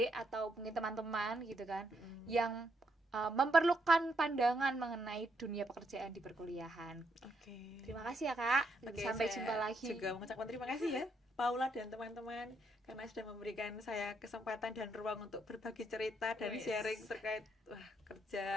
atau mungkin teman-teman gitu kan yang memerlukan pandangan mengenai dunia pekerjaan di perkuliahan. Terima kasih ya Kak. Sampai jumpa lagi. Juga mengucapkan terima kasih ya Paula dan teman-teman karena sudah memberikan saya kesempatan dan ruang untuk berbagi cerita dan sharing terkait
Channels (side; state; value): both; normal; correlation 0.76